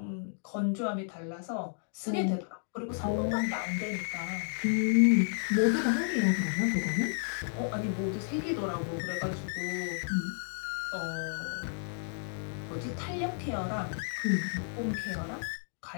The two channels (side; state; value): right; silent; digital silence